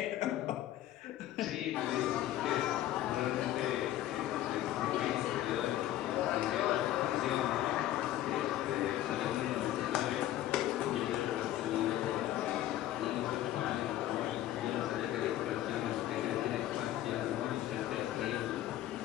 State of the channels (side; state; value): right; quieter; 13.4 dB